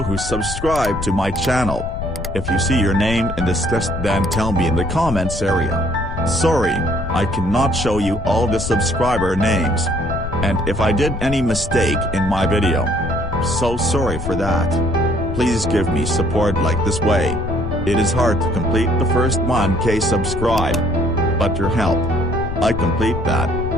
who subscribe to my channel. If you see your name in this list, then tell me in the comments area. Sorry, I cannot show you all the subscriber names. And if I did any mistake in my video, so sorry for that. Please give me support like this way. It is hard to complete the first 1K subscribe. But your help, I complete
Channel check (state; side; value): noise; left; rumble, 7 dB below the sound